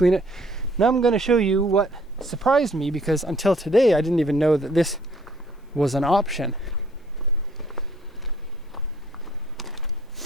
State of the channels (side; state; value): both; normal; correlation 0.61